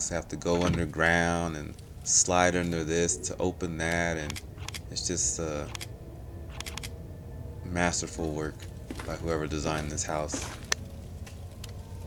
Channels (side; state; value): both; identical; correlation 1.00